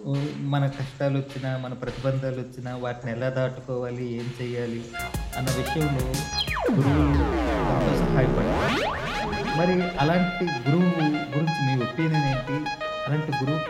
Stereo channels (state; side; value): identical; both; correlation 1.00